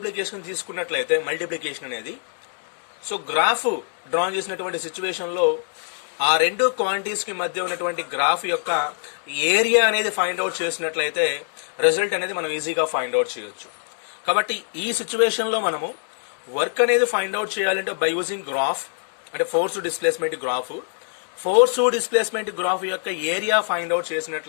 తీసుకున్నట్లయితే మల్టిప్లికేషన్ అనేది సో గ్రాఫ్ డ్రా చేసినటువంటి సిచ్యువేషన్లో ఆ రెండు క్వాంటిటీస్కి మధ్య ఉన్నటువంటి గ్రాఫ్ యొక్క ఏరియా అనేది ఫైండ్ అవుట్ చేసినట్లయితే రిజల్ట్ అనేది మనం ఈజీగా ఫైండ్ అవుట్ చేయొచ్చు. కాబట్టి ఈ సిచ్యువేషన్లో మనము వర్క్ అనేది ఫైండ్ అవుట్ చేయాలంటే బై యూజింగ్ గ్రాఫ్ అంటే force displacement graph, force displacement graph యొక్క ఏరియా ఫైండ్ అవుట్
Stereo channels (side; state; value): right; silent; digital silence